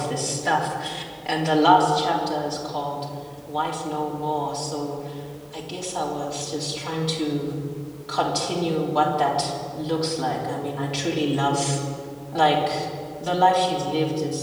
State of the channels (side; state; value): both; identical; correlation 1.00